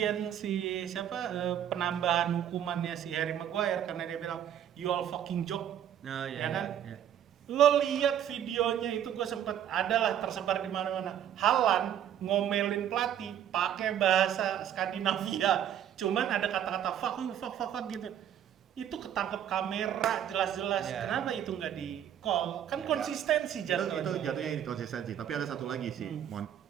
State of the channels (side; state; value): left; quieter; 10.1 dB